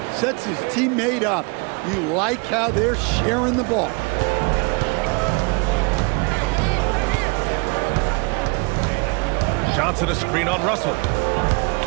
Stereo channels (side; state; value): left; quieter; 30.2 dB